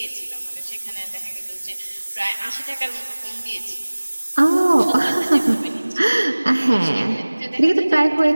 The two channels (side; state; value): both; inverted; correlation -1.00